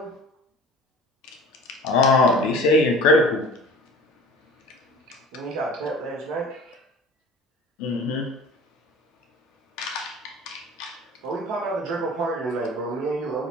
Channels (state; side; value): normal; both; correlation 0.42